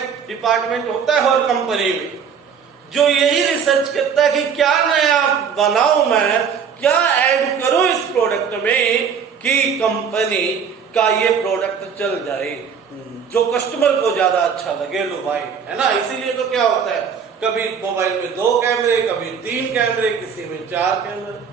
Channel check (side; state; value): left; quieter; 6.9 dB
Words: डिपार्टमेंट होता है हर कंपनी में, जो यही रिसर्च करता है कि क्या नया बनाऊं मैं, क्या ऐड करूं इस प्रोडक्ट में कि कंपनी का ये प्रोडक्ट चल जाए, जो कस्टमर को ज्यादा अच्छा लगे, लो भाई, है ना। इसीलिए तो क्या होता है, कभी मोबाइल में 2 कैमरे, कभी 3 कैमरे, किसी में 4 कैमरे,